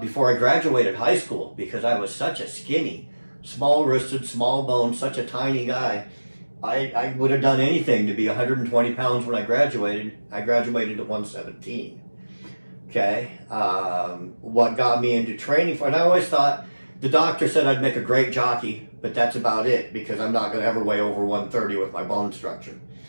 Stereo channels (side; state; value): both; inverted; correlation -1.00